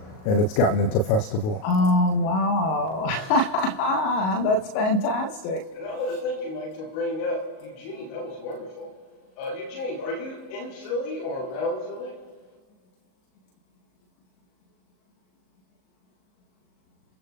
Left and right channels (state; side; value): late; right; 38 ms